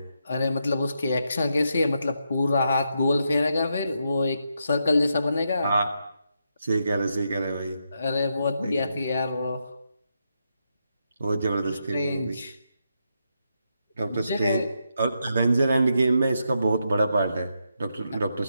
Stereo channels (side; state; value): both; inverted; correlation -0.82